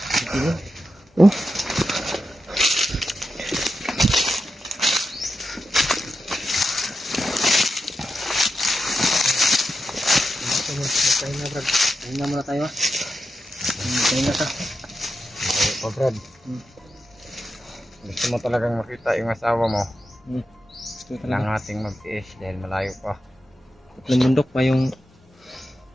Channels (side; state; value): both; normal; correlation 0.88